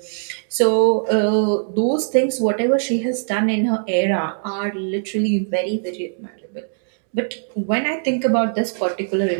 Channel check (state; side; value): silent; left; digital silence